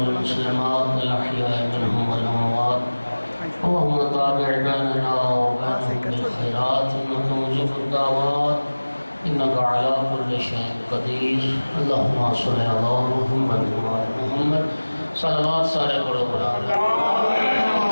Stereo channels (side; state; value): both; inverted; correlation -1.00